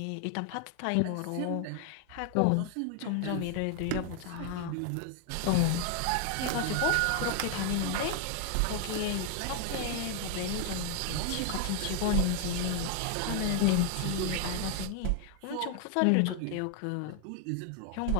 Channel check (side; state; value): both; different; correlation 0.00